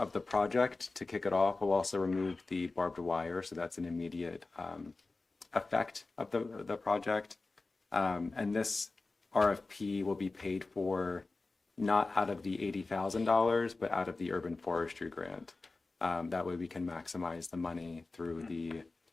the project, to kick it off, will also remove the barbed wire, so that's an immediate effect of the project. And this RFP will be paid for not out of the $80,000, but out of the urban forestry grant. That way we can maximize the money through the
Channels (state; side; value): quieter; right; 3.5 dB